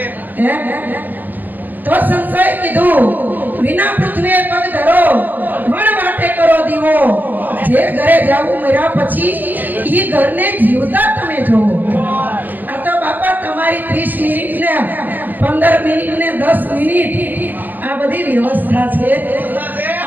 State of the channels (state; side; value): late; left; 0.086 ms